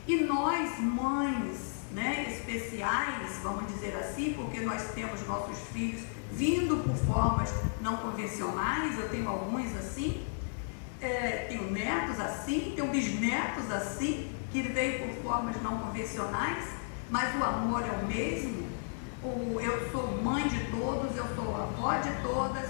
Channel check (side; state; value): right; silent; digital silence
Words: E nós, mães, né, especiais, vamos dizer assim, porque nós temos nossos filhos vindo por formas não convencionais. Eu tenho alguns assim, tenho netos assim, tenho bisnetos assim, que veio por formas não convencionais, mas o amor é o mesmo. Eu sou mãe de todos, eu sou avó de todos,